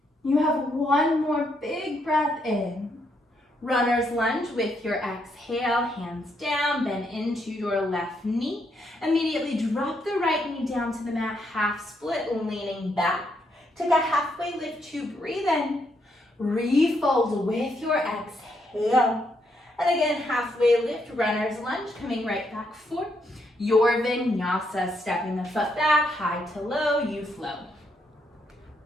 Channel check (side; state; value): both; normal; correlation 0.76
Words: You have one more big breath in. Runner's lunge with your exhale, hands down, bend into your left knee. Immediately drop the right knee down to the mat, half split, leaning back. Take a halfway lift to breathe in. Refold with your exhale. And again, halfway lift, runner's lunge, coming right back forward. Your vinyasa, stepping the foot back, high to low, you flow.